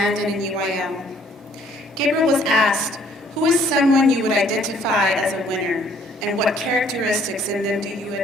and in UIL. Gabriel was asked, who is someone you would identify as a winner, and what characteristics in them do you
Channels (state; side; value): normal; both; correlation 0.61